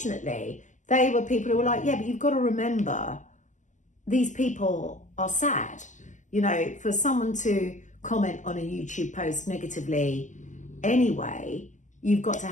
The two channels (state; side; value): late; right; 0.36 ms